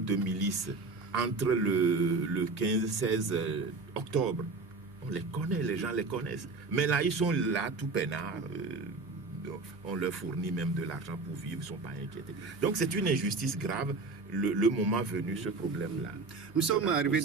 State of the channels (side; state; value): left; quieter; 3.8 dB